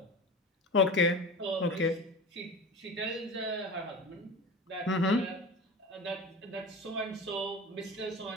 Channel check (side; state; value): both; normal; correlation 0.31